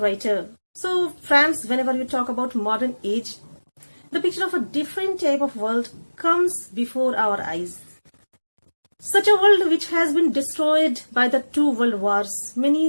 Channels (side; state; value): both; inverted; correlation -1.00